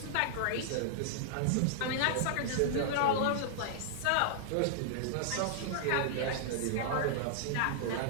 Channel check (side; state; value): both; different; correlation -0.01